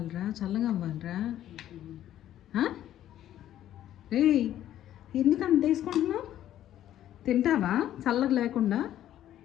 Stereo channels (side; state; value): right; quieter; 12.1 dB